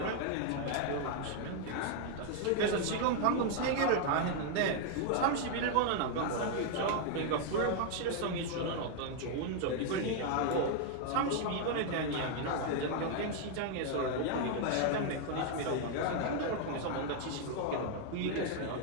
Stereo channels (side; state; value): both; different; correlation 0.00